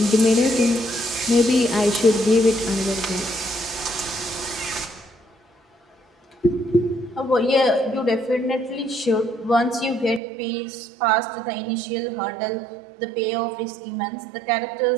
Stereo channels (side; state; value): left; drops out; at 10.2 s